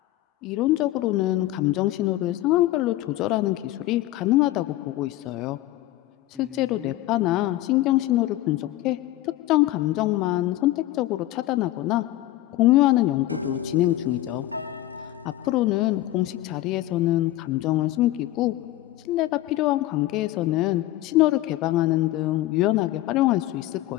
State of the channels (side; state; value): right; quieter; 15.6 dB